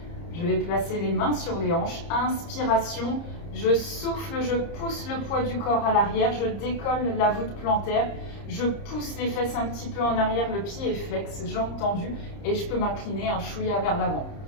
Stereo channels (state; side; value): late; right; 30 ms